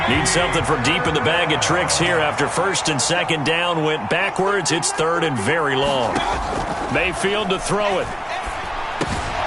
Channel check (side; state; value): both; identical; correlation 1.00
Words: Need something from deep in the bag of tricks here after 1st and 2nd down went backwards. It's 3rd and very long. Mayfield to throw it.